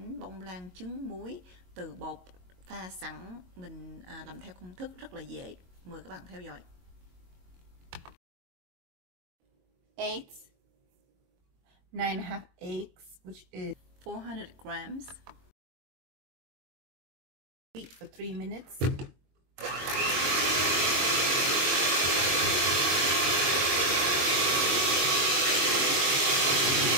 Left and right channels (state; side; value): late; left; 22 ms